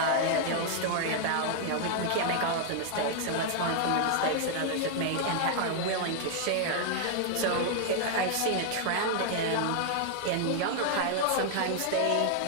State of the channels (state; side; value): different; both; correlation 0.00